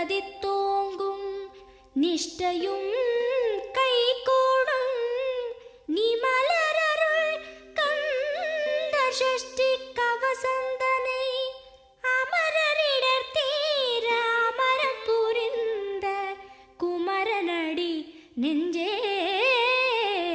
நிஷ்டையும் கைகூடும் நீ மலரருள் கந்த சஷ்டி கவசந்தனை. அமரரிடர் தீர அமரம் புரிந்த குமரனடி நெஞ்சே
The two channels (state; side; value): identical; both; correlation 1.00